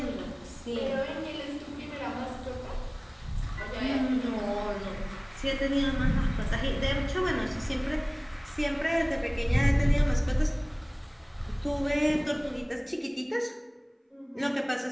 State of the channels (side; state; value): both; identical; correlation 1.00